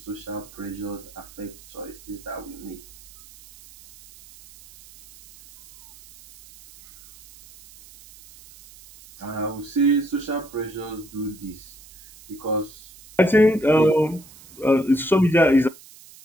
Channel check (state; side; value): noise; right; hiss, 21 dB below the sound